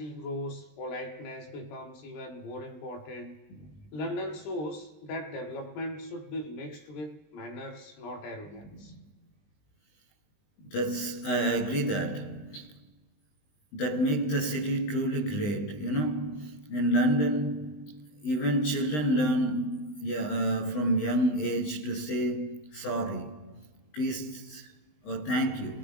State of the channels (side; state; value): right; late; 20 ms